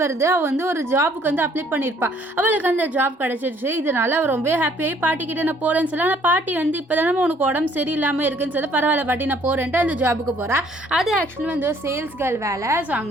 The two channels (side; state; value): both; normal; correlation 0.61